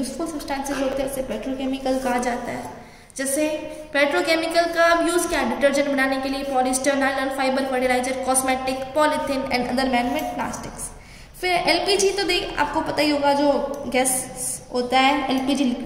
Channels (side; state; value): both; identical; correlation 1.00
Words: सब्सटेंसेस होते हैं उसे पेट्रोकेमिकल कहा जाता है। जैसे पेट्रोकेमिकल का यूज क्या है, डिटर्जेंट बनाने के लिए polyester, nylon fibre, fertiliser, cosmetic, polythene and other manmade plastics. फिर एलपीजी तो देख आपको पता ही होगा जो गैस होता है LPG